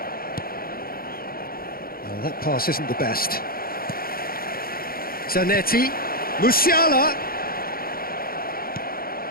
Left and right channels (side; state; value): right; late; 0.43 ms